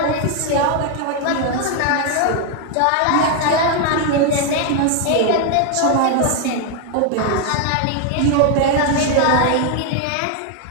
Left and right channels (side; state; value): both; different; correlation 0.01